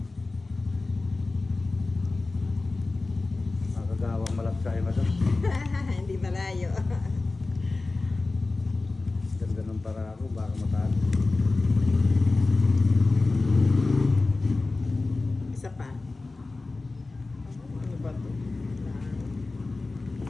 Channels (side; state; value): right; quieter; 3.4 dB